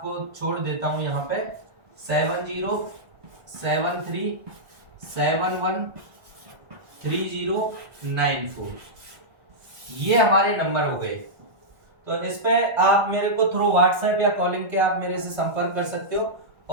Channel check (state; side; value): late; left; 1.8 ms